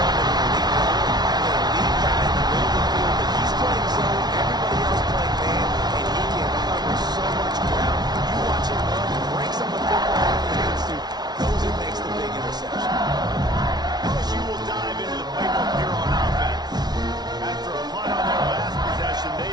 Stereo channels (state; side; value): late; left; 0.19 ms